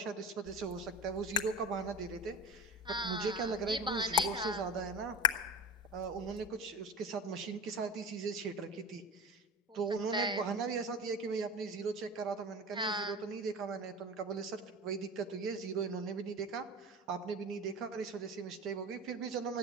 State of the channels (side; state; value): both; normal; correlation 0.30